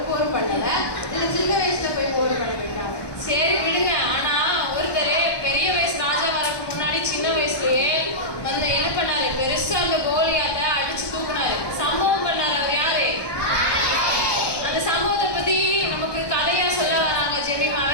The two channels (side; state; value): right; late; 1.2 ms